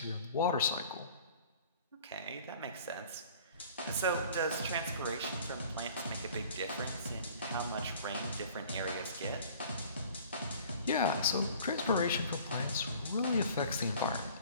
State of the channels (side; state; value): both; inverted; correlation -0.49